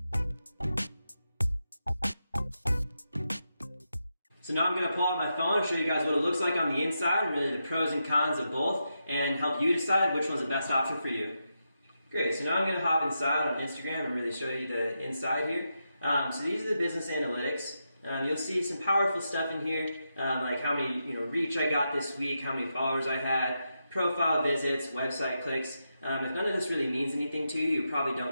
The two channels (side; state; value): both; inverted; correlation -0.86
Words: So now I'm going to pull out my phone and show you guys what it looks like on the inside and really the pros and cons of both and help you decide which one's the best option for you. Great, so now I'm going to hop inside on Instagram and really show you the inside here. So these are the business analytics. You'll see some powerful stuff in here, like how many reach I got this week, how many followers I had, profile visits, website clicks. If none of this really means anything to you, you probably